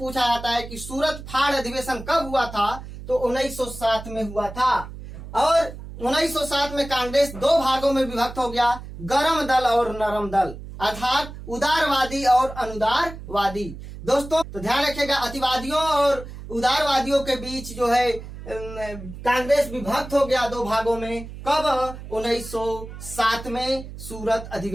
जाता है कि सूरत फाड़ अधिवेशन कब हुआ था। तो 1907 में हुआ था। और 1907 में कांग्रेस दो भागों में विभक्त हो गया, गरम दल और नरम दल, अर्थात उदारवादी और अनुदारवादी। दोस्तों तो ध्यान रखिएगा, अतिवादियों और उदारवादियों के बीच जो है कांग्रेस विभक्त हो गया दो भागों में। कब? 1907 में सूरत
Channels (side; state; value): right; noise; hum, 12 dB below the sound